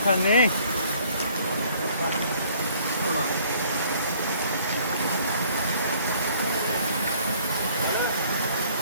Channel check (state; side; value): inverted; both; correlation -0.59